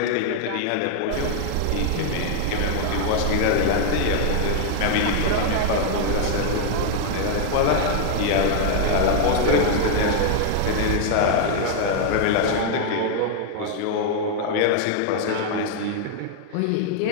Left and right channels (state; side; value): different; both; correlation 0.00